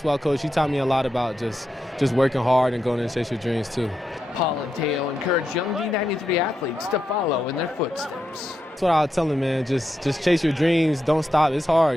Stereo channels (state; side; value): normal; both; correlation 0.85